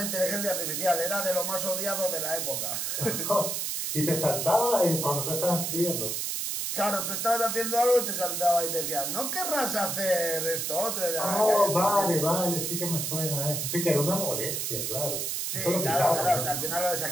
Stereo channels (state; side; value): noise; right; hiss, 1 dB below the sound